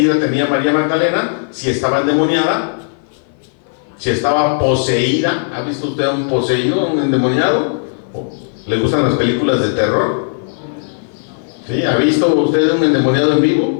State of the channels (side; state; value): right; silent; 57 dB below the other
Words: tenía María Magdalena, si estaba endemoniada, si estaba poseída. ¿Ha visto usted a un poseído, un endemoniado? ¿Le gustan las películas de terror? ¿Sí? ¿Ha visto usted un endemoniado en